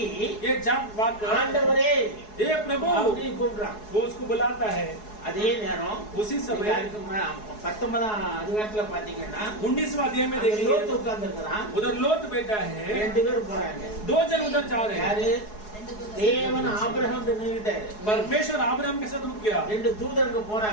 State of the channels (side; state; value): right; late; 4.7 ms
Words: ये जाग वाकर ஆண்டவரே ये प्रभु அப்படி கூப்பிடுறான்। वो उसको बुलाता है। அதே நேரம் उसी समय அதுக்கு 19ஆம் அதிகாரத்துல பாத்தீங்கன்னா 19वां अध्याय में அங்க देखिए லோத்து உட்கார்ந்து இருக்கிறான், उधर लोत बैठा है, 2 பேர் போறாங்க, 2 जन उधर जा रहे हैं। யாரு? தேவன் ஆபிரகாம் நின்னுட்டாரு, परमेश्वर अब्राहम के साथ रुक गया, 2 தூதர்கள்